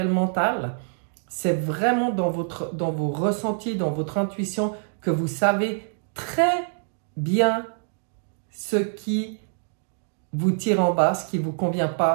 le mental. C'est vraiment dans vos ressentis, dans votre intuition, que vous savez très bien ce qui vous tire en bas, ce qui ne vous convient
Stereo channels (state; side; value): silent; left; digital silence